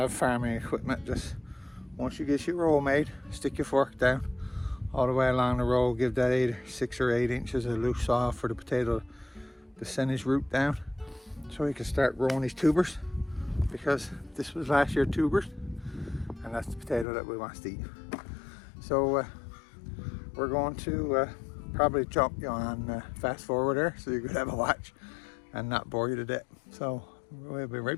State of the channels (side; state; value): right; drops out; at 17.1 s